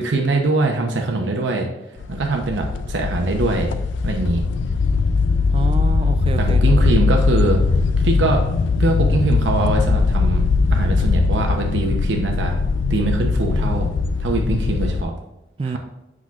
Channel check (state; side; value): normal; both; correlation 0.73